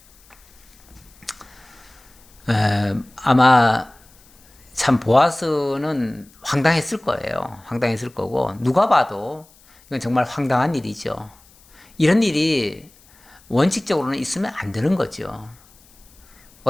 아마 참 보아스는 황당했을 거예요. 황당했을 거고, 누가 봐도 이건 정말 황당한 일이죠. 이런 일이 원칙적으로는 있으면 안 되는 거죠.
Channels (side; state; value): left; noise; hiss, 28 dB below the sound